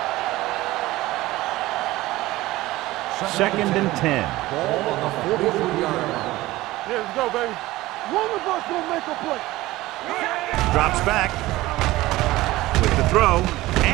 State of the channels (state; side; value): quieter; left; 17.9 dB